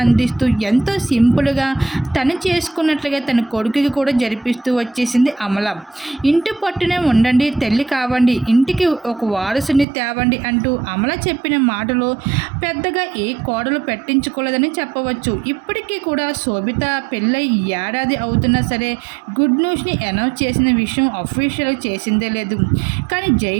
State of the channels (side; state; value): left; drops out; at 9.9 s